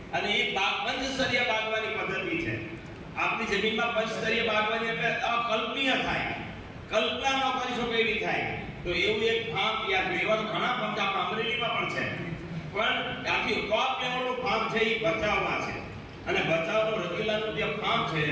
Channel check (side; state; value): both; identical; correlation 1.00